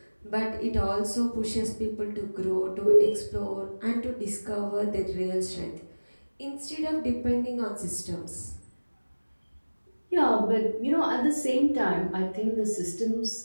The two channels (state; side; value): inverted; both; correlation -1.00